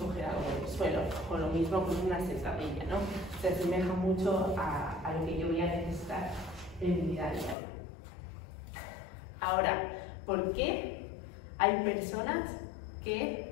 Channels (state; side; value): drops out; right; at 7.6 s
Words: algo del suelo, o lo mismo con una sentadilla, ¿no? Se asemeja mucho a lo que yo voy a necesitar en mi vida diaria. Ahora, ¿por qué hay personas